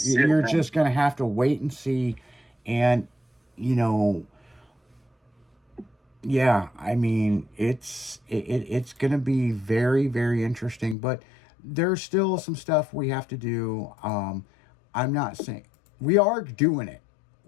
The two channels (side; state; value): right; drops out; at 11.0 s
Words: You're just going to have to wait and see. And, you know, yeah, I mean, it's going to be very, very interesting. But there's still some stuff we have to do. I'm not saying we are doing it.